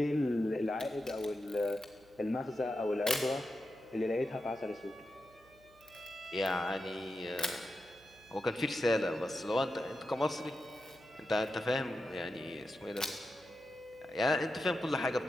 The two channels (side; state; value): right; noise; hum, 28 dB below the sound